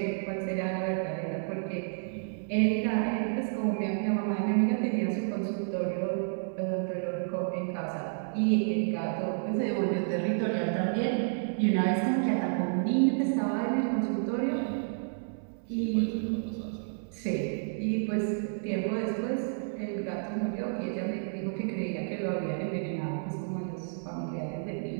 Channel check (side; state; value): left; silent; 57 dB below the other